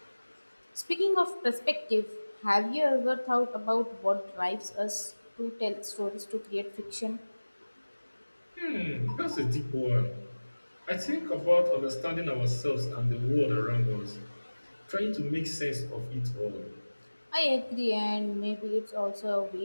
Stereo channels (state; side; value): inverted; both; correlation -1.00